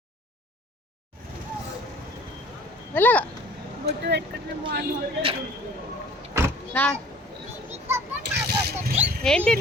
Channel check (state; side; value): normal; both; correlation 0.51